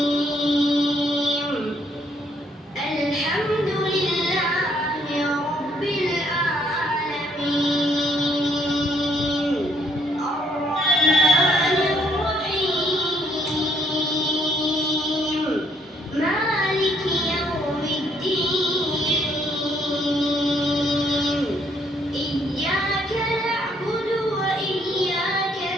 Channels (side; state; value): both; normal; correlation 0.69